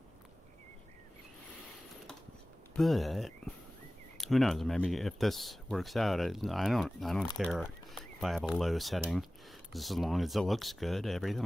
But who knows? Maybe if this works out, I don't care if I have a low setting, just as long as it looks good.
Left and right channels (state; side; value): normal; both; correlation 0.97